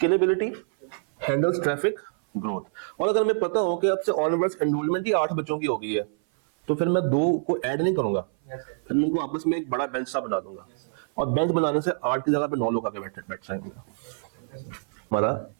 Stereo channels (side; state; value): left; silent; 57 dB below the other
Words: हैंडल्स ट्रैफिक ग्रोथ। और अगर हमें पता हो कि अब से ऑनवर्ड्स एनरोलमेंट ही 8 बच्चों की हो गई है, तो फिर मैं 2 को ऐड नहीं करूंगा, फिर मैं उनको आपस में एक बड़ा बेंच सा बना दूंगा, और बेंच बनाने से 8 की जगह पे 9 लोग आके बैठ जाएंगे। हमारा